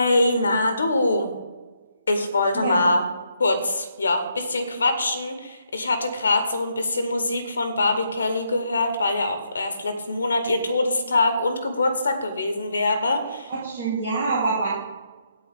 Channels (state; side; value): inverted; both; correlation -0.77